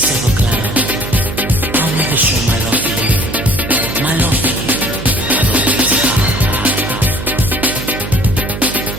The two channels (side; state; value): right; noise; hum, 8 dB below the sound